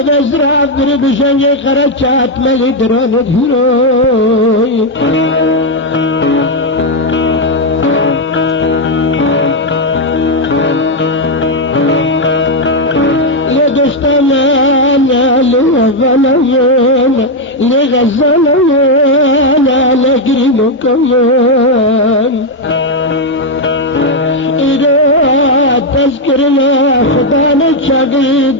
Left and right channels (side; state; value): both; normal; correlation 0.02